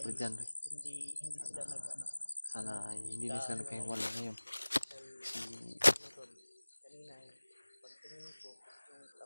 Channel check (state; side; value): inverted; both; correlation -1.00